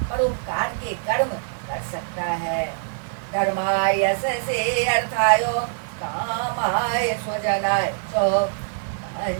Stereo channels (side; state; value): left; silent; digital silence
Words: परोपकार के कर्म कर सकता है। धर्माय यशसे अर्थाय कामाय स्वजनाय च